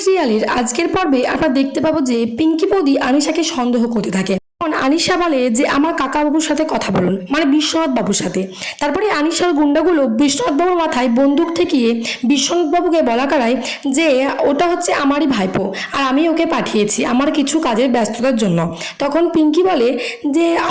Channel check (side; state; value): both; identical; correlation 1.00